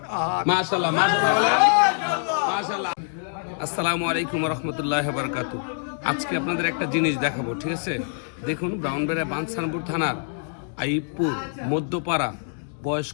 আহাদ। মাশাআল্লাহ মাশাআল্লাহ মাশাআল্লাহ। আসসালামু আলাইকুম ওয়া রাহমাতুল্লাহি ওয়া বারাকাতুহু। আজকে আপনাদের একটা জিনিস দেখাবো, ঠিক আছে? দেখুন, ব্রাউনবেড়া বাঞ্ছানপুর থানার আইবপুর মধ্যপাড়া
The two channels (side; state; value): right; silent; digital silence